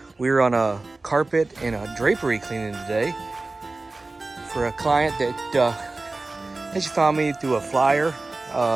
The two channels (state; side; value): quieter; left; 3.3 dB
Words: We're on a carpet and a drapery cleaning today for a client that she found me through a flyer